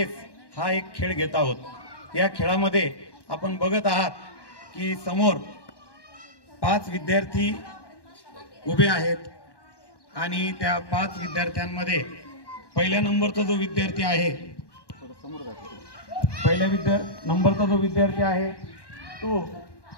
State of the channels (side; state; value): right; late; 1.1 ms